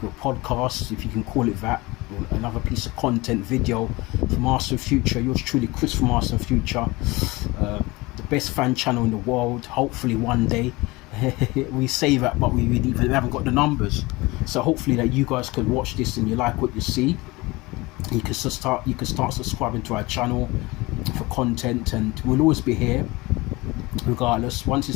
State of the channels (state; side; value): quieter; right; 22.5 dB